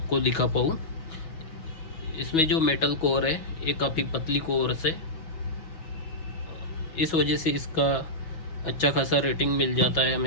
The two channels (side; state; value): right; late; 6.2 ms